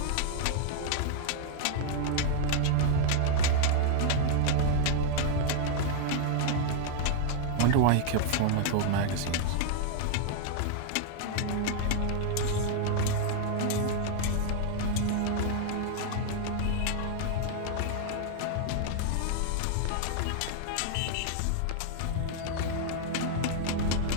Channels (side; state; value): both; different; correlation 0.00